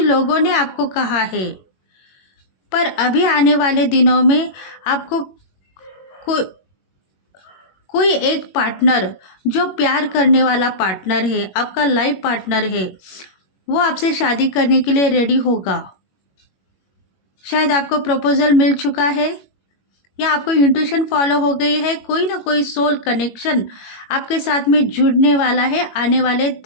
लोगों ने आपको कहा है, पर अभी आने वाले दिनों में आपको को, कोई एक पार्टनर जो प्यार करने वाला पार्टनर है, आपका लाइफ पार्टनर है, वो आपसे शादी करने के लिए रेडी होगा। शायद आपको प्रपोजल मिल चुका है, या आपको इंट्यूशन फॉलो हो गई है। कोई ना कोई सोल कनेक्शन आपके साथ में जुड़ने वाला है आने वाले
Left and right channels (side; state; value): right; late; 21 ms